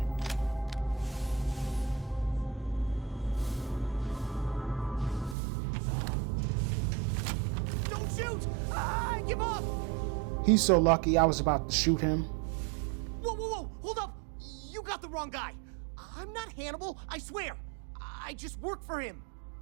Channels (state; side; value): drops out; left; at 5.4 s